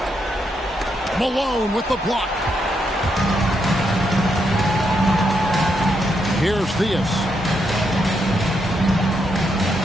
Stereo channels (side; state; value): both; normal; correlation 0.80